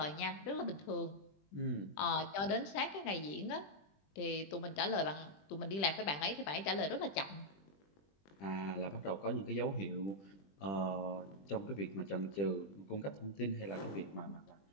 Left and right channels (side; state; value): right; late; 20 ms